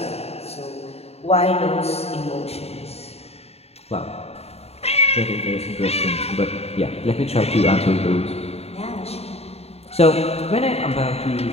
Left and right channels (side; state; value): right; late; 0.30 ms